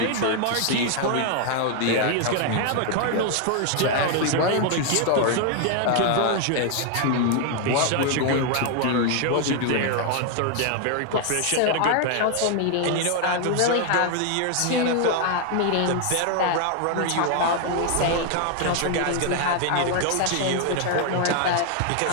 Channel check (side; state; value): both; different; correlation 0.00